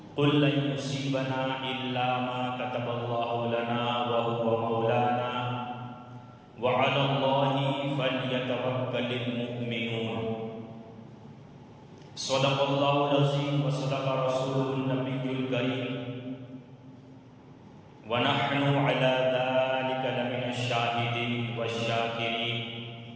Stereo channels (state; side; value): identical; both; correlation 1.00